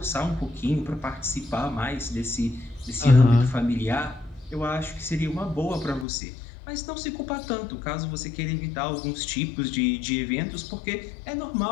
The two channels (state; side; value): drops out; right; at 6.1 s